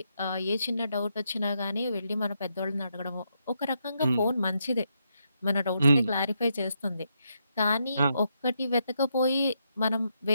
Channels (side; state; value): both; inverted; correlation -0.80